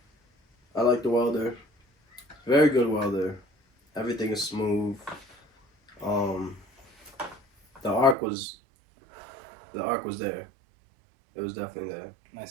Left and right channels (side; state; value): left; drops out; at 8.2 s